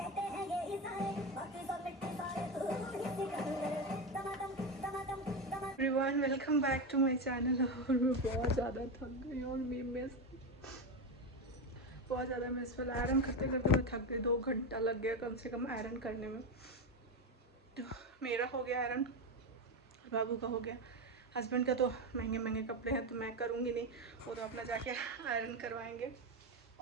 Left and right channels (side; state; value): both; normal; correlation 0.15